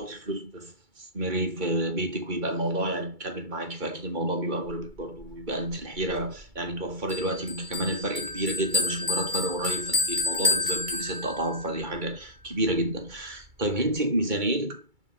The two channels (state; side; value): late; left; 2.3 ms